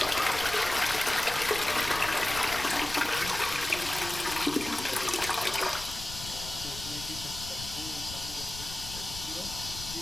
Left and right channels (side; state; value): left; noise; rumble, 12 dB below the sound